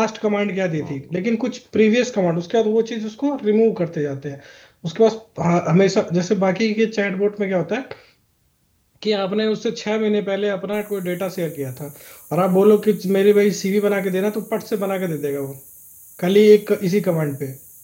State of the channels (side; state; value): both; identical; correlation 1.00